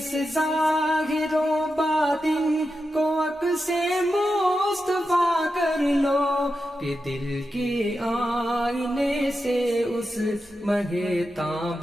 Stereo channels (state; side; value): normal; both; correlation 0.89